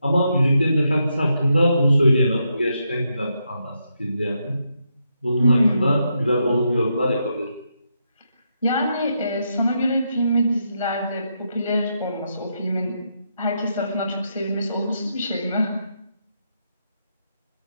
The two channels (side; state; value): both; inverted; correlation -0.81